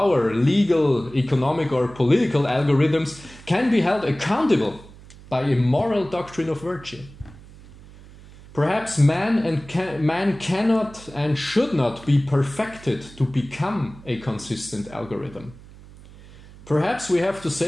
legal, economic or political algorithms can be held accountable by a moral doctrine of virtue. Perhaps man cannot and should not be perfected to become a consistent algorithm. Perhaps we have to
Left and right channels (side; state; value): right; noise; hum, 20 dB below the sound